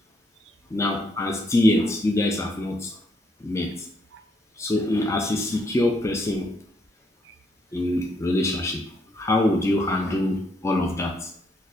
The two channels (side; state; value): both; normal; correlation 0.73